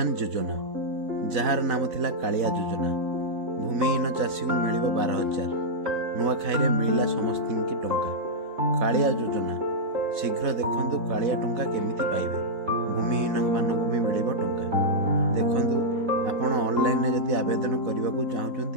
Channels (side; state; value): left; late; 4.0 ms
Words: योजना jar नाम थिला कालिया योजना भूमिहीन चाषी को मिल 12,000 नुआखाई मिलला समस्त की टंका कालिया योजना शीघ्र देखंतु कालिया टंका केमिति पाइबे भूमिहीन मानक भी मिल टंका देखंतु आपण ऑनलाइन रे जदि आवेदन करबा को